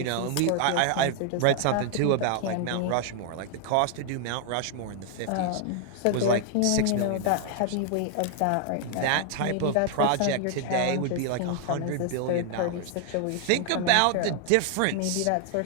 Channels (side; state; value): both; different; correlation 0.00